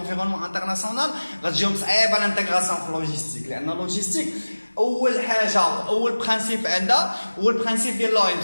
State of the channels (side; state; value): both; inverted; correlation -1.00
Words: international, غتجيهم صعيبة l'intégration في logistique. لأن logistique اول حاجه اول برانسيب عندها هو البرانسيب ديال لو ام